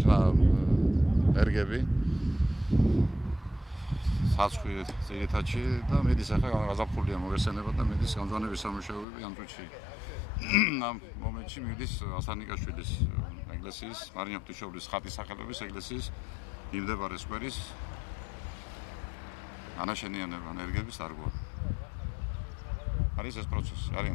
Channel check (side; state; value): right; drops out; at 9.1 s